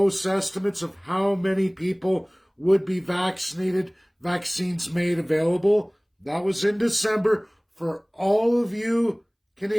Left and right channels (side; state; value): both; identical; correlation 1.00